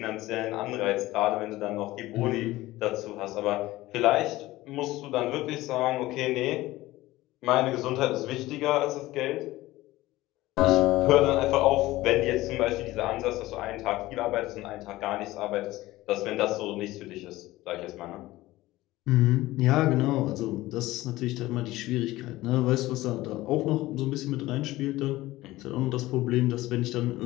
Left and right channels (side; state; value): right; quieter; 17.6 dB